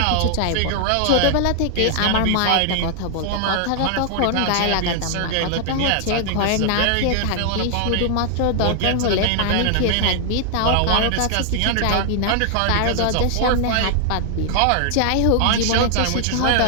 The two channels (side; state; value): both; different; correlation 0.00